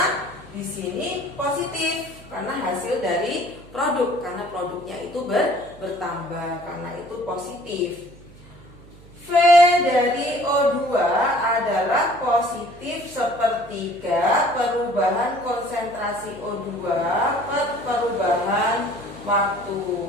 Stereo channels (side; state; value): right; noise; hum, 22 dB below the sound